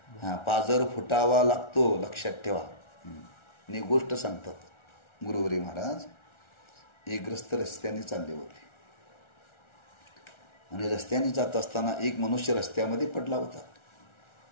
पाजर फुटावा लागतो, लक्षात ठेवा. आणि गोष्ट सांगतात गुरुवरी महाराज. एक ग्रस्त रस्त्याने चालले होते आणि रस्त्याने जात असताना एक मनुष्य रस्त्यामध्ये पडला होता.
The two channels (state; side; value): late; right; 1.4 ms